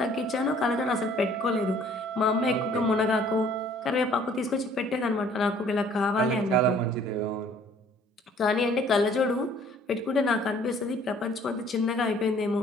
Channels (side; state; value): both; normal; correlation 0.57